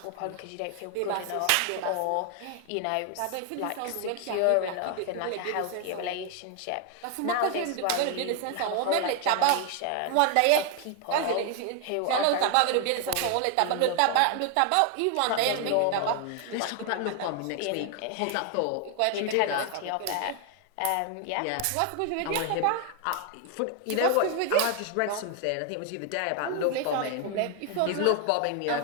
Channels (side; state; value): both; different; correlation 0.00